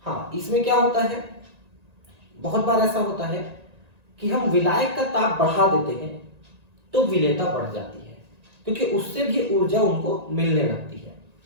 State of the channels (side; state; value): left; late; 1.9 ms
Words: हाँ, इसमें क्या होता है, बहुत बार ऐसा होता है कि हम विलायक का ताप बढ़ा देते हैं तो विलेयता बढ़ जाती है, क्योंकि उससे भी ऊर्जा उनको मिलने लगती है